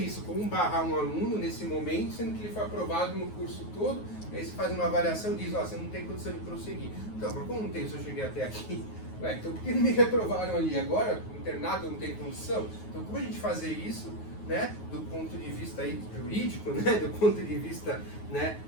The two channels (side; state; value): right; late; 9.4 ms